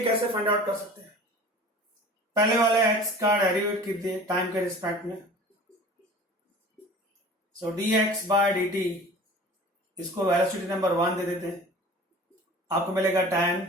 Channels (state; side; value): normal; both; correlation 0.42